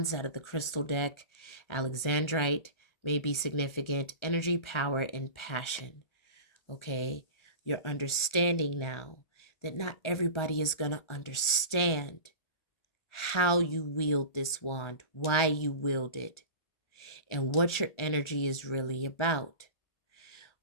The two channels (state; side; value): late; right; 1.4 ms